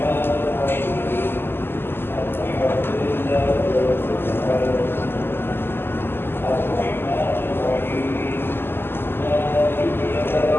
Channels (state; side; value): late; right; 0.11 ms